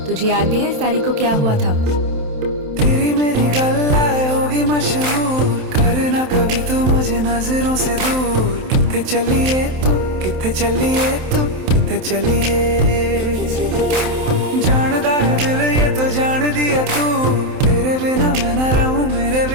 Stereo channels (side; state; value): left; late; 27 ms